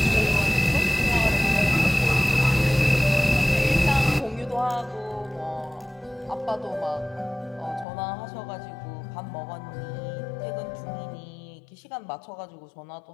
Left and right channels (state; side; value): drops out; right; at 7.9 s